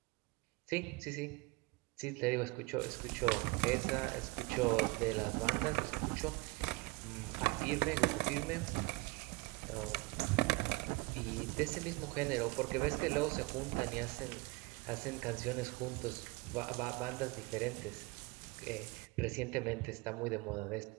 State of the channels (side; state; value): left; quieter; 23.2 dB